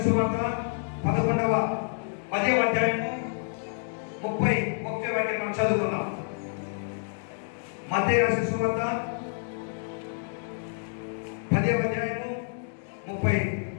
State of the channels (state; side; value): silent; right; digital silence